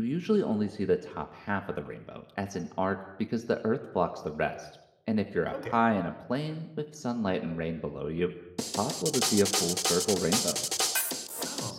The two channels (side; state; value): both; identical; correlation 1.00